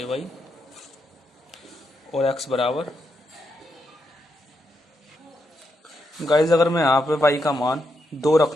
और x बराबर, गाइज अगर मैं यहाँ पे y का मान 2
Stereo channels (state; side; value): normal; both; correlation 0.82